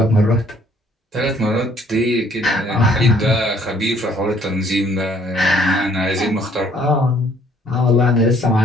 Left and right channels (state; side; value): normal; both; correlation 0.62